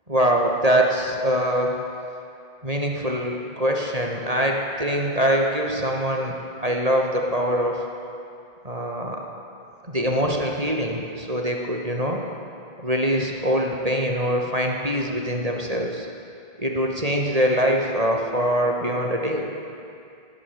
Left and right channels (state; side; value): late; left; 1.8 ms